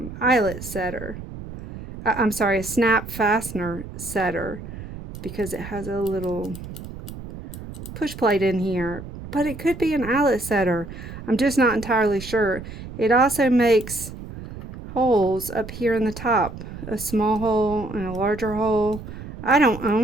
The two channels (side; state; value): right; noise; rumble, 12 dB below the sound